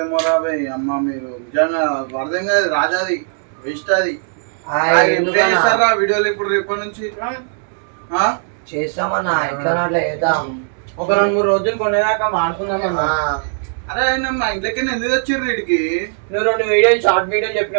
రాబోయ్ అమ్మ మీరు నిజంగా అర్థం కాదు రాజాది వేస్ట్ అది వీడియోలు ఇప్పుడు రేపటి నుంచి చేస్తామన్నా ఎట్లా అట్లా చేద్దాం ఒక 2-3 రోజులు కొనేదాకా వాడుకుందామన్నా. అరే మా ఇంట్లోకి ఎందుకు వచ్చిర్రు వీడికి? నువ్వు 2 వీడియోలు షార్ట్ వీడియోలు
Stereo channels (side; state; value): left; silent; 67 dB below the other